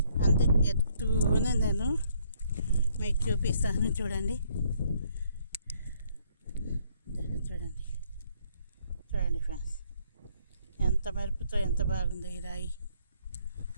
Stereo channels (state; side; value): inverted; both; correlation -0.67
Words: అంతే ఎత్తుతూనే నేను మీకు చూపిస్తాను. చూడండి చూడండి చూడండి ఫ్రెండ్స్, ఎంత మెరుపుతో ఎంత బాగుందో ఈ రాయి.